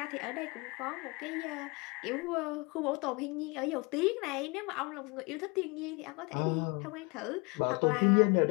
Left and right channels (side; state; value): right; quieter; 28.6 dB